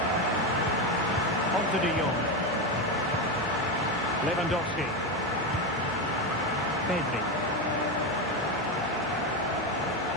On to De Jong. Lewandowski. Pedri.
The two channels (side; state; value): right; noise; hum, 16 dB below the sound